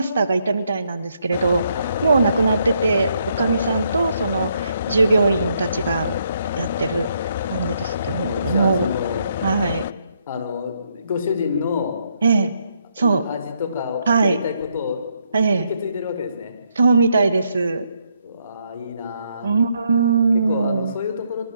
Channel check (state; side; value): inverted; both; correlation -0.75